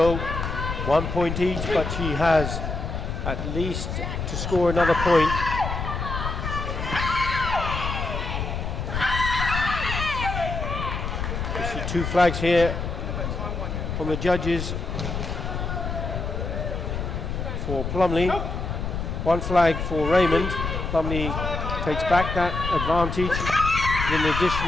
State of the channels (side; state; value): left; noise; rumble, 4 dB below the sound